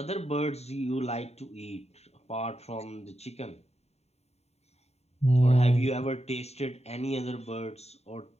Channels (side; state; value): right; late; 0.31 ms